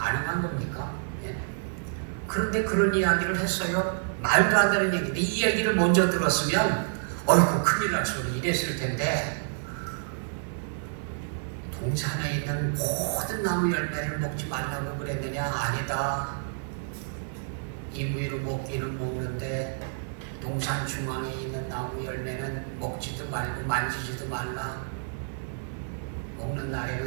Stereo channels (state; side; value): silent; left; 59 dB below the other